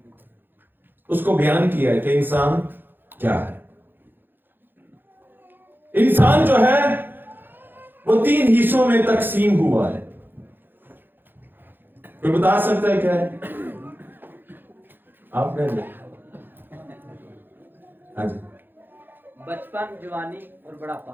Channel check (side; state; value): left; late; 0.096 ms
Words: उसको बयान किया है कि इंसान क्या है। इंसान जो है वो 3 हिस्सों में तकसीम हुआ है। कोई बता सकता है क्या है? आपने? हाँ जी। बचपन, जवानी और